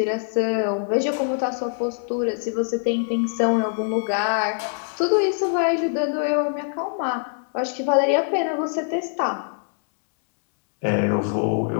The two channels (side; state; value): right; silent; 63 dB below the other